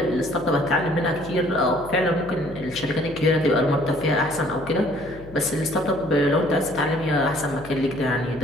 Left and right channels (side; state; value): left; noise; hum, 17 dB below the sound